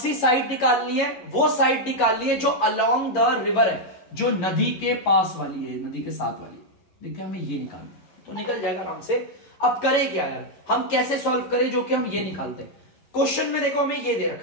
साइड निकालनी है, वो साइड निकालनी है जो अलोंग द रिवर है, जो नदी के पास वाली है, नदी के साथ वाली। देखिए हमें ये निकालना है, तो निकल जाएगा आराम से। अब करें क्या यार, हम कैसे सॉल्व करें जो कि हम ये निकालते हैं। क्वेश्चन में देखो हमें ये दे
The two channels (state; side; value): late; right; 11 ms